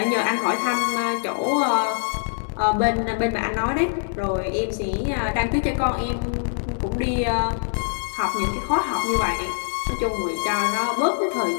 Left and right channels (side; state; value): right; silent; digital silence